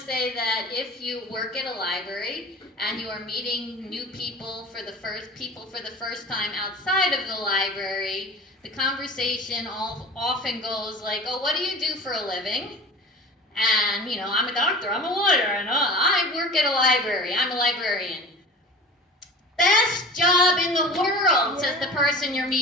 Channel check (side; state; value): both; normal; correlation 0.37